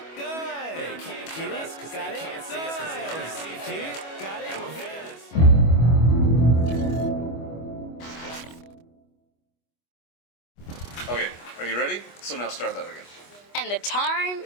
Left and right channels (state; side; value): late; right; 25 ms